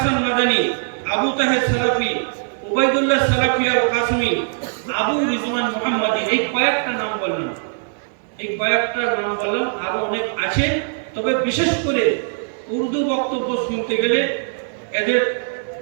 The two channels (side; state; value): left; silent; digital silence